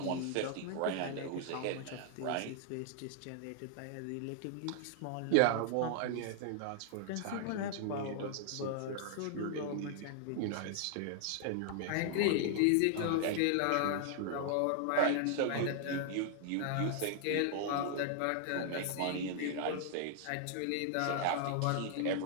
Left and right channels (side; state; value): both; different; correlation 0.00